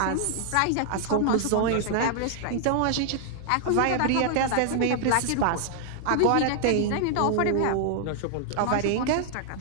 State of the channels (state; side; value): different; both; correlation -0.01